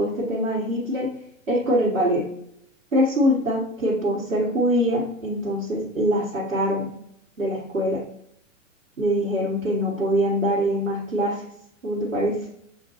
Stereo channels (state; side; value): normal; both; correlation 0.36